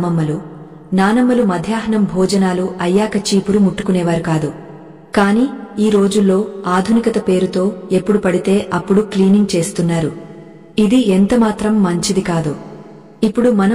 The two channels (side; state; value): both; identical; correlation 1.00